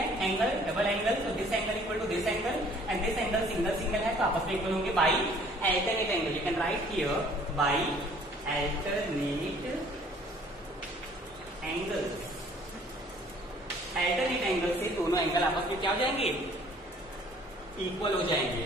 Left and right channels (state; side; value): normal; both; correlation 0.55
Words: एंगल डबल एंगल, तो this angle equal to this angle and this angle single single है, तो आपस में इक्वल होंगे by alternate angle. You can write here by alternate angle. Alternate angle से दोनों एंगल आपस में क्या हो जाएंगे, इक्वल हो जाएंगे।